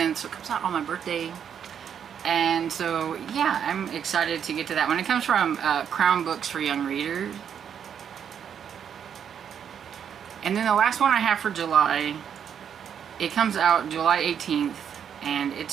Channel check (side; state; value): left; quieter; 8.2 dB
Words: so it comes out on my birthday. And so yeah, I'm excited to get to that one. It comes from Crown Books for Young Readers. And then the last one I have for July, it comes out July 18th, and